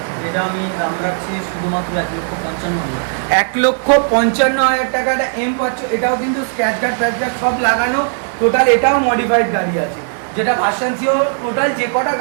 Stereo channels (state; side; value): silent; left; 64 dB below the other